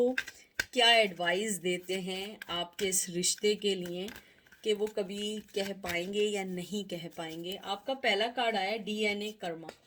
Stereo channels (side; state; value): both; identical; correlation 1.00